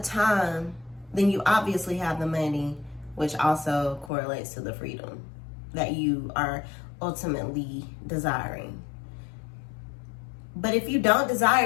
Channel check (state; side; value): drops out; right; at 4.1 s